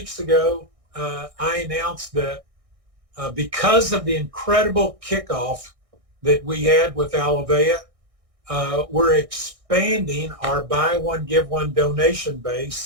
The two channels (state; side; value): late; left; 1.6 ms